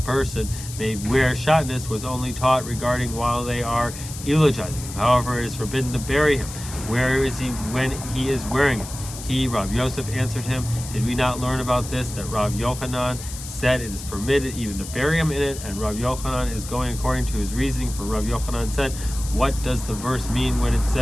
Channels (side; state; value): left; noise; hiss, 12 dB below the sound